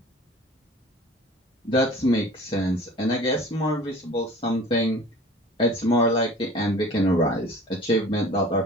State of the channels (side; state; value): both; normal; correlation 0.44